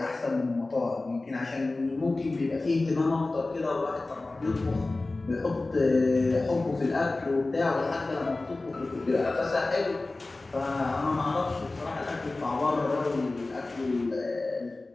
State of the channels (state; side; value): quieter; right; 3.2 dB